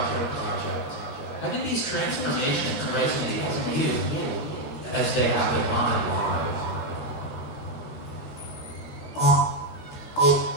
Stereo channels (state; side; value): late; right; 14 ms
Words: How do these transformations resonate with you as they have in mine?